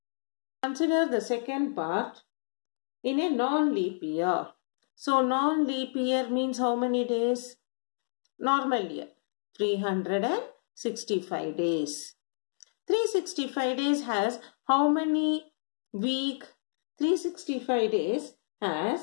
Consider the second part in a non-leap year. So non-leap year means how many days? Normal year. 365 days. 365 days has how many week? 365 days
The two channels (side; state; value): right; silent; digital silence